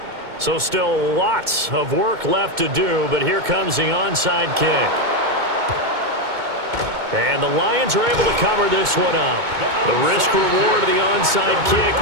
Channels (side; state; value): left; late; 2.2 ms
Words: So still lots of work left to do, but here comes the onside kick. And the Lions are able to cover this one up. The risk reward of the onside kick,